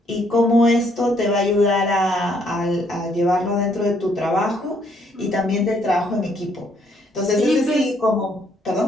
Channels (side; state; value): both; normal; correlation 0.69